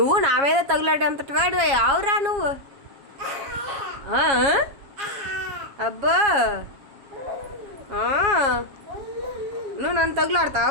నా మీద తగులాడేంతటి వాడు ఆవురా నువ్వు. అబ్బా నువ్వు నన్ను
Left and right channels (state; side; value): late; left; 7.3 ms